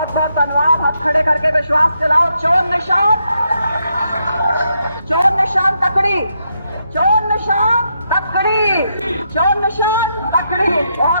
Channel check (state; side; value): inverted; both; correlation -0.80